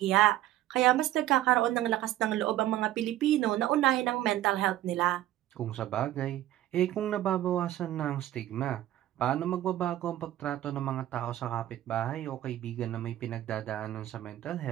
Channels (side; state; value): left; quieter; 13.9 dB